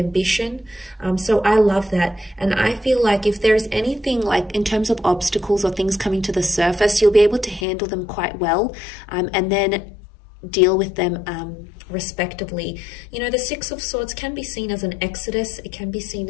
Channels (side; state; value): right; drops out; at 7.7 s